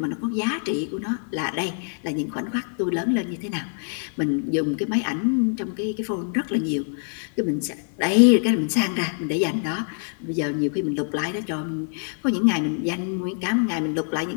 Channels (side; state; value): right; silent; 62 dB below the other